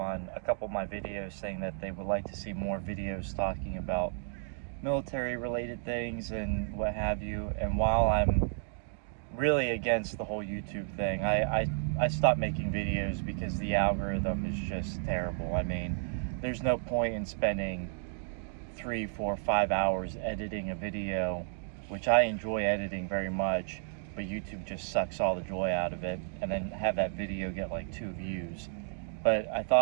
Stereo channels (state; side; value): silent; left; digital silence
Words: a couple of my videos saying that they would like to see more videos talking about military related things and what have you. And while I'm really against the whole YouTube thing, I stopped making videos because the algorithm is just terrible. I mean, there's no point in spending 3, 4, 5 hours editing a video, which I enjoy editing very much, but YouTube just sucks all the joy out of it, and then have that video get like 2 views. But I